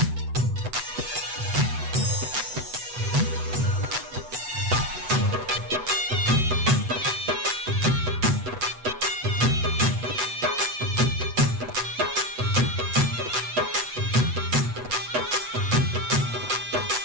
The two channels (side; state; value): left; late; 8.0 ms